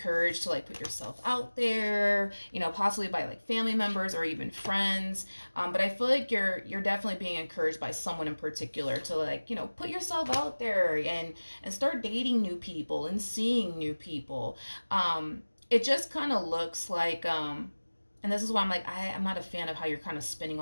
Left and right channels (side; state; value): both; inverted; correlation -1.00